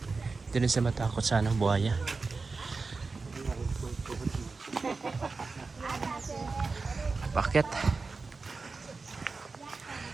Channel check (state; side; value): quieter; left; 4.1 dB